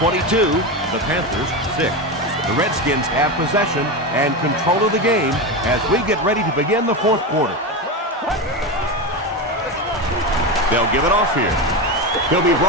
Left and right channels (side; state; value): both; normal; correlation 0.17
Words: the Panthers 6. The Redskins have possession and control of the game as we get ready to begin the 4th quarter. They'll give it off here. He'll be